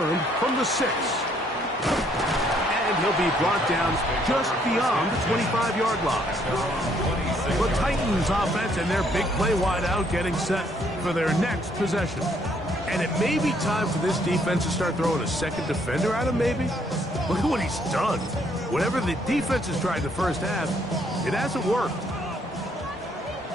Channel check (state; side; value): normal; both; correlation 0.68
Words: from the 6. And he'll be brought down just beyond the 25-yard line. The Titans offense and their big play wideout getting set for their next possession. And it may be time for this defense to start throwing a second defender at him, maybe. Look at what he's done. Whatever the defense has tried the first half, it hasn't worked.